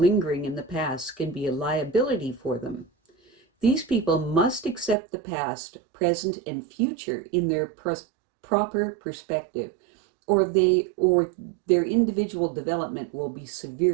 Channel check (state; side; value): drops out; left; at 5.0 s